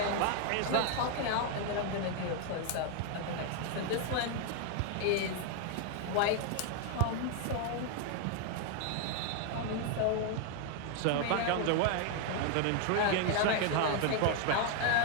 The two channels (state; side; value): different; both; correlation 0.00